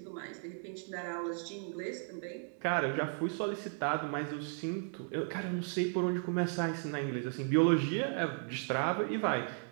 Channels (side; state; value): left; silent; 54 dB below the other